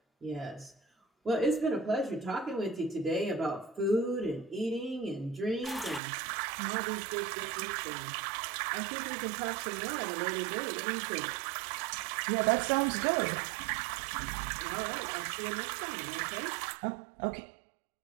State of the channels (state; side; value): drops out; left; at 6.0 s